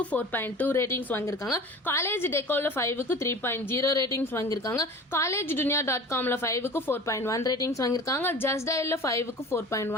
4.2 ரேட்டிங்ஸ் வாங்கியிருக்காங்க. காலேஜ் டெக்கோல 5க்கு 3.0 ரேட்டிங்ஸ் வாங்கியிருக்காங்க. காலேஜ் dunia.comல 5க்கு 4.1 ரேட்டிங்ஸ் வாங்கியிருக்காங்க. ஜஸ்ட் டயல்ல 5க்கு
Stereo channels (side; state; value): both; normal; correlation 0.39